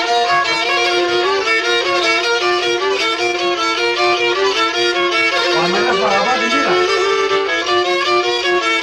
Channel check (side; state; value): both; identical; correlation 1.00